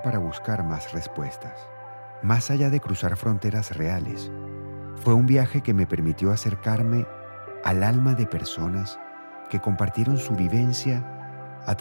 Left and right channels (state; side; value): inverted; both; correlation -1.00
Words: para buscar más respuestas. Más allá de cruzar fronteras reales, fue un viaje que me permitió acercarme al alma de personas que compartieron su vivencia a